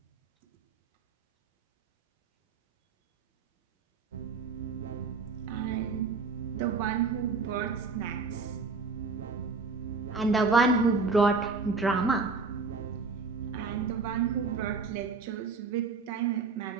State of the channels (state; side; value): quieter; left; 4.4 dB